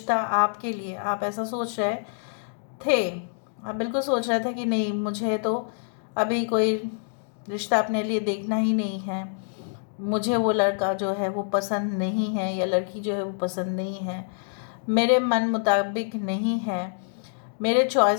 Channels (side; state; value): right; silent; digital silence